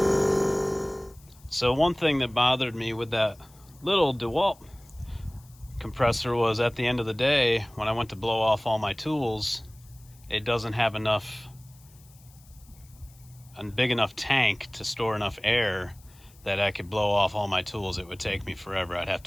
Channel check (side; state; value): left; noise; hiss, 27 dB below the sound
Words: So one thing that bothered me with that little DeWalt compressor was at the end of the day, when I went to blow off all my tools, it doesn't have a big enough tank to store enough air that I could blow off all my tools. It would take me forever. I'd have